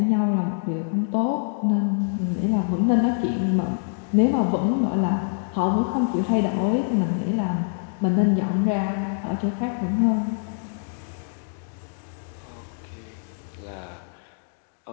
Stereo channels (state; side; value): silent; right; digital silence